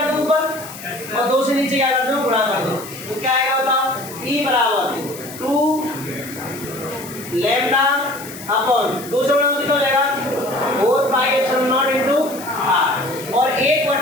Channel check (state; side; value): noise; left; hiss, 14 dB below the sound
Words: दो ऊपर और 2 से नीचे क्या कर दो? गुणा कर दो। तो क्या आएगा बताओ? e बराबर 2 लैम्डा अपॉन 2 से गुणा कितना हो जाएगा? 4 पाई एप्सिलॉन नॉट इनटू r और